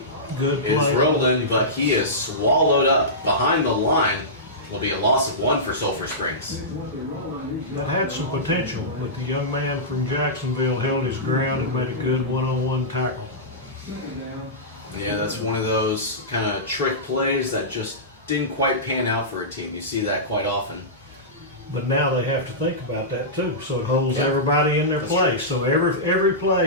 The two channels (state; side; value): normal; both; correlation -0.17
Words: Good play. Is rolling, but he is swallowed up behind the line. Will be a loss of 1 for Sulphur Springs. That had some potential, but the young man from Jacksonville held his ground and made a good one-on-one tackle. Yeah, that's one of those kind of trick plays that just didn't quite pan out for a team. You see that quite often. But now they have to think about that too, so it holds everybody in their place. So every